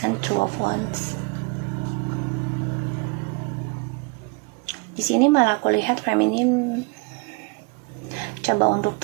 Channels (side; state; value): left; quieter; 29.4 dB